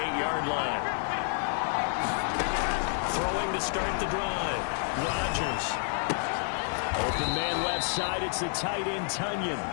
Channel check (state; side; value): silent; right; 57 dB below the other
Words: line. Throwing to start the drive. Rodgers. Open man left side. It's the tight end, Tunyon.